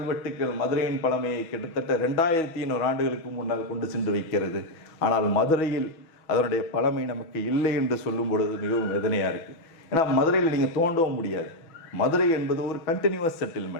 மதுரையின் பழமையை கிட்டத்தட்ட 2500 ஆண்டுகளுக்கு முன்னால் கொண்டு சென்று வைக்கிறது. ஆனால் மதுரையில் அதனுடைய பழமை நமக்கு இல்லை என்று சொல்லும் பொழுது மிகவும் வேதனையாக இருக்குது. ஏன்னா மதுரையில் நீங்கள் தோண்டவும் முடியாது. மதுரை என்பது ஒரு கண்டினியூவஸ்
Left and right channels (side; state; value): right; late; 6.2 ms